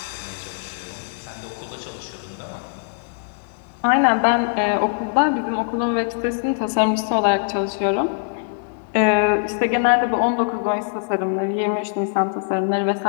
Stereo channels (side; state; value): right; silent; digital silence